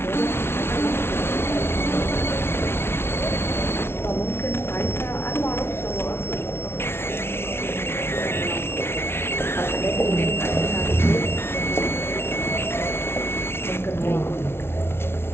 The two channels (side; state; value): right; late; 0.12 ms